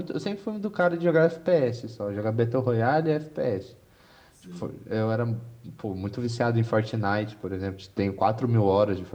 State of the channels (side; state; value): both; identical; correlation 1.00